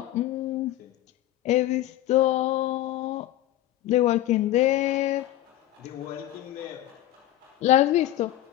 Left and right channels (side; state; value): right; quieter; 14.1 dB